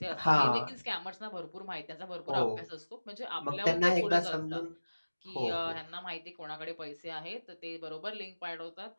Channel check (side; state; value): both; inverted; correlation -1.00